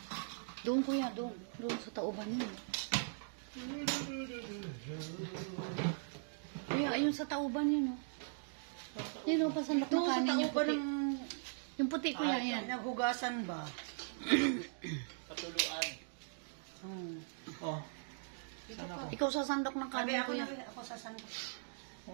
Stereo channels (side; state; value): left; silent; digital silence